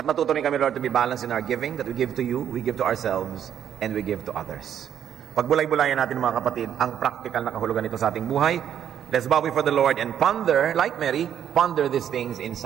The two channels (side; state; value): left; quieter; 9.5 dB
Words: matuto rin kami, Lord, to be balanced in our giving, that we give to you, we give to ourselves, and we give to others. Pagbulay-bulayan natin mga kapatid, ang practical na kahulugan nito sa ating buhay. Let's bow before the Lord and ponder, like Mary, ponder these things in